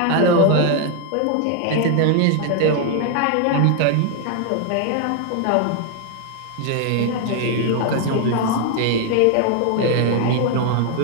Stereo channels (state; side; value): different; both; correlation 0.00